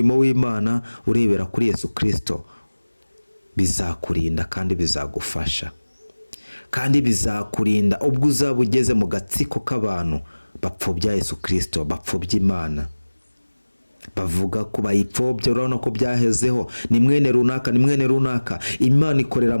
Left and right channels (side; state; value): both; inverted; correlation -1.00